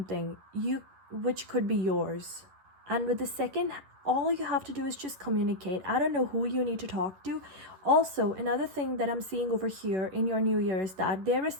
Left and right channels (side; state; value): left; late; 11 ms